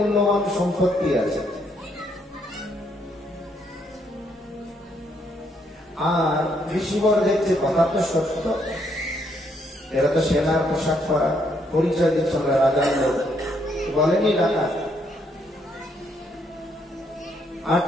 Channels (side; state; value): both; normal; correlation 0.72